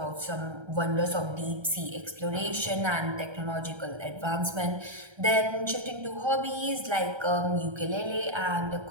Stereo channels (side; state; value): left; late; 1.3 ms